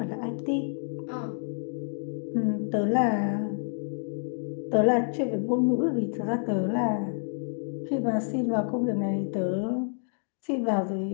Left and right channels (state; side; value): silent; right; digital silence